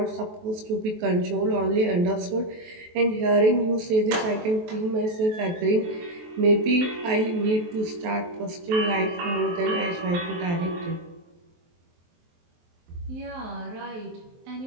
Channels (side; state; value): left; late; 23 ms